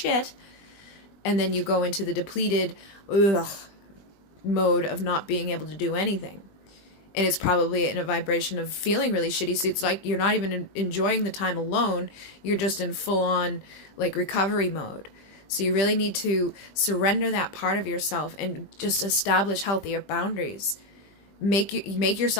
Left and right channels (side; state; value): right; late; 20 ms